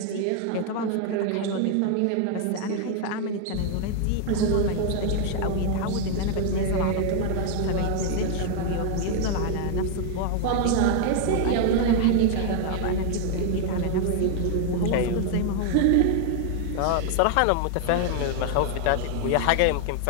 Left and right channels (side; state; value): both; different; correlation 0.00